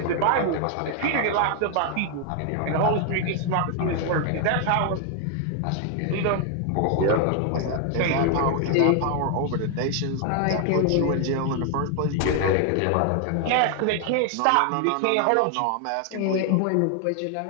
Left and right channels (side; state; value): both; different; correlation 0.00